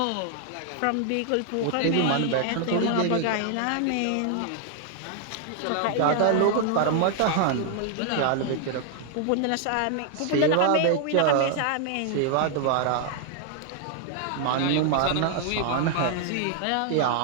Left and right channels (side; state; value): both; different; correlation 0.00